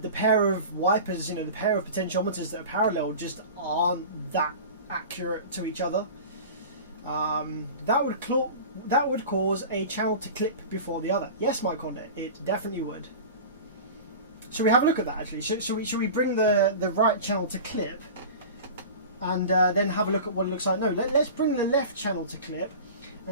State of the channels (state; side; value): inverted; both; correlation -0.35